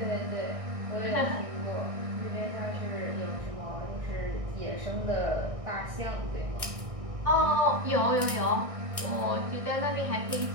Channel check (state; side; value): late; left; 1.6 ms